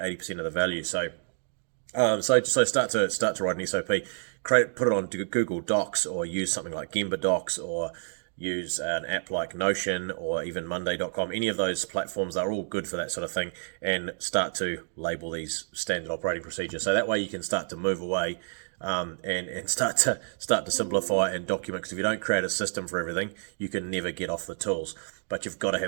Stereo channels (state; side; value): silent; left; digital silence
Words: of the value. So start to write an SOP, put it on Google Docs, or use something like Gemba Docs, or use an app like Notion, or even Monday.com. Any of those platforms are all good for that sort of thing, and start to label these standard operating procedures. So that way you can start to move away, and start to simplify and document. Because if you don't create a system for everything, you can never get off the tools. But you've got to